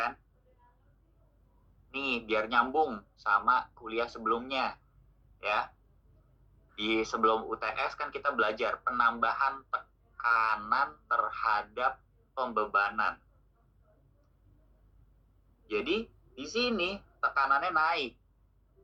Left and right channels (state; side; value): identical; both; correlation 1.00